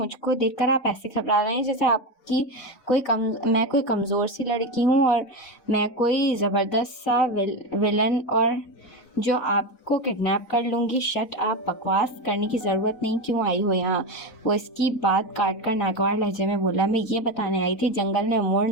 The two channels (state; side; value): late; right; 4.0 ms